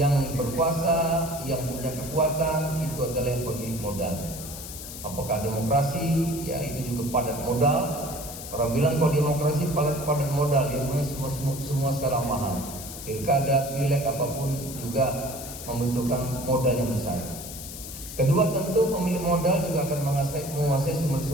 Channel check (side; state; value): left; noise; hiss, 11 dB below the sound